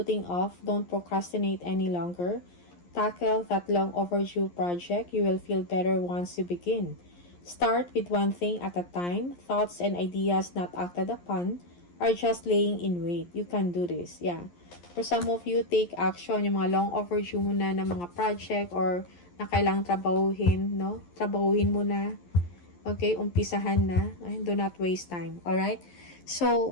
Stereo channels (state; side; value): late; right; 11 ms